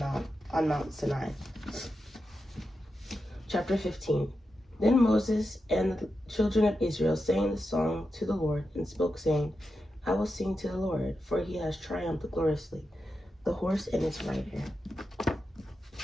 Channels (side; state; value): both; normal; correlation 0.89